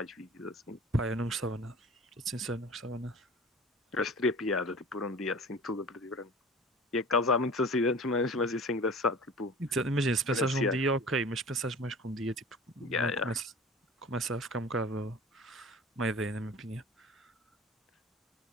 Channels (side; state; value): both; normal; correlation 0.41